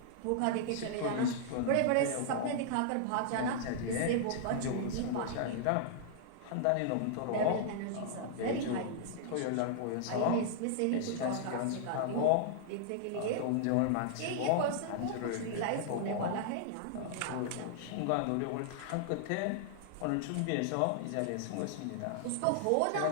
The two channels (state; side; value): different; both; correlation -0.01